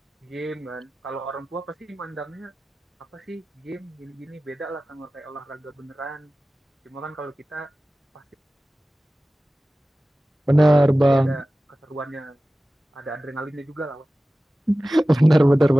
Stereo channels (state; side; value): normal; both; correlation 0.96